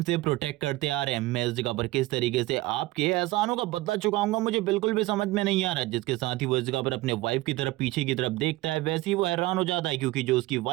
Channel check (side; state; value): left; quieter; 19.1 dB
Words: से प्रोटेक्ट करते आ रहे हैं। मैं इस जगह पर किस तरीके से आपके एहसानों का बदला चुकाऊंगा मुझे बिल्कुल भी समझ में नहीं आ रहा। जिसके साथ ही वो इस जगह पर अपने वाइफ की तरफ पीछे की तरफ देखता है, वैसे ही वो हैरान हो जाता है क्योंकि जो उसकी